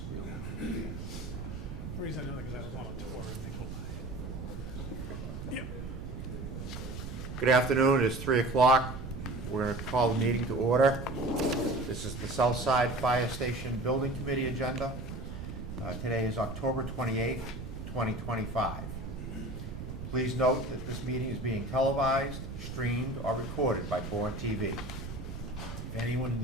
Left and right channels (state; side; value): noise; right; rumble, 8 dB below the sound